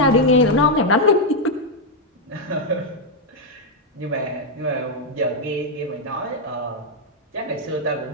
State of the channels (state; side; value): normal; both; correlation 0.00